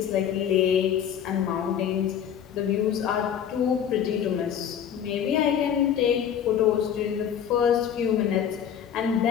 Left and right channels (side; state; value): right; quieter; 8.9 dB